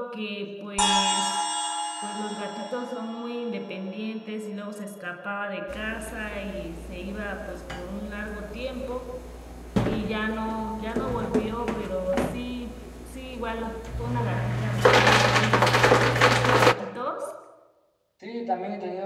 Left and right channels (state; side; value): identical; both; correlation 1.00